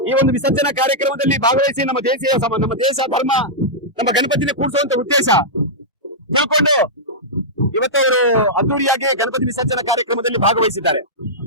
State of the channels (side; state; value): both; normal; correlation -0.10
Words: ಈ ಒಂದು ವಿಸರ್ಜನಾ ಕಾರ್ಯಕ್ರಮದಲ್ಲಿ ಭಾಗವಹಿಸಿ ನಮ್ಮ ದೇಶ ಧರ್ಮ ನಮ್ಮ ಗಣಪತಿನ ಕೂಡಿಸುವಂತ ಉದ್ದೇಶ ತಿಳ್ಕೊಂಡು ಇವತ್ತು ಅವರು ಅದ್ದೂರಿಯಾಗಿ ಗಣಪತಿ ವಿಸರ್ಜನಾ ಕಾರ್ಯಕ್ರಮದಲ್ಲಿ ಭಾಗವಹಿಸಿದ್ದಾರೆ.